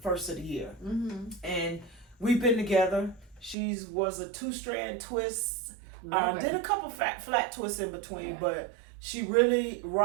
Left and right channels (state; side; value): drops out; left; at 3.6 s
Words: first of the year. And we've been together. She was a 2-strand twist. Did a couple flat twists in between, but she really